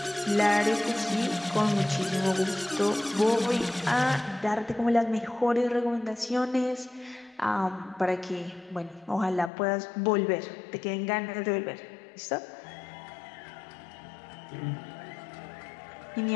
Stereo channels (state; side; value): drops out; right; at 9.5 s